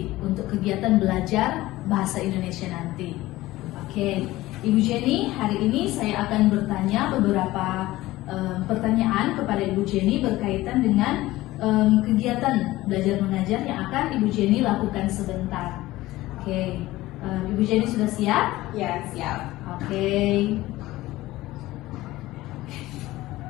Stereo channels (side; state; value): right; quieter; 17.5 dB